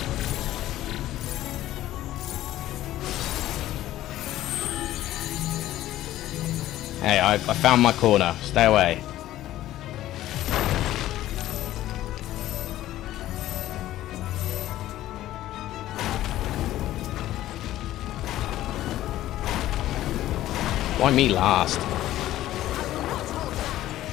Hey, I found my corner. Stay away. Why me last?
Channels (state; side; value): quieter; right; 14.2 dB